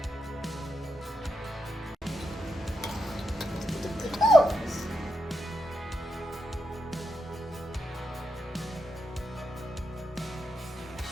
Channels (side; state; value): both; normal; correlation 0.85